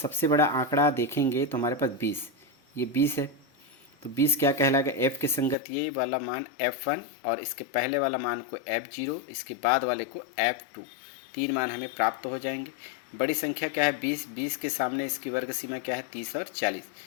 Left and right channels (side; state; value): right; drops out; at 5.6 s